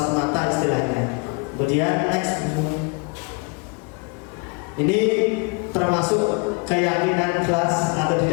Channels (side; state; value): right; quieter; 32.2 dB